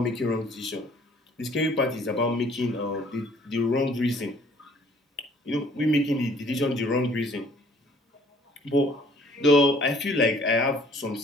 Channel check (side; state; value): both; normal; correlation 0.57